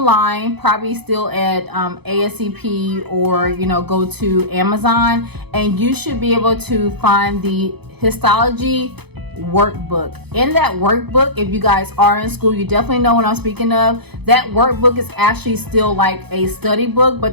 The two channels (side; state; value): left; late; 0.98 ms